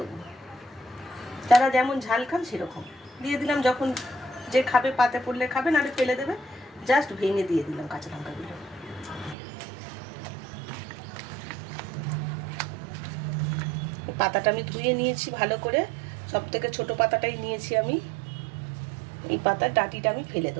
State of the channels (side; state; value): left; drops out; at 9.3 s